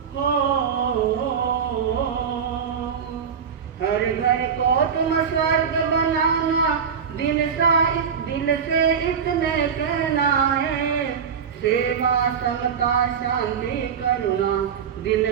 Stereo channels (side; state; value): left; quieter; 7.0 dB